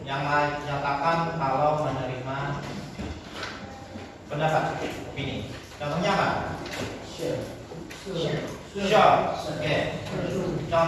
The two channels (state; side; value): identical; both; correlation 1.00